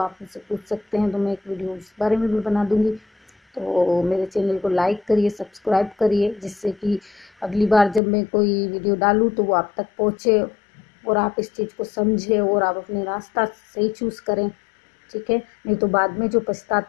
मुझसे पूछ सकते हैं, तो मैं एक वीडियो उस बारे में भी बना दूंगी। तो मेरे चैनल को लाइक करिए, सब्सक्राइब करिए, जिससे कि अगली बार जब मैं कोई वीडियो डालूँ तो वो आप तक पहुँचे, और आप इस चीज़ को समझें, और आप अपने रास्ता सही चूज़ करें, ठीक है। नहीं तो बाद में जो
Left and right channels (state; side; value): drops out; right; at 8.0 s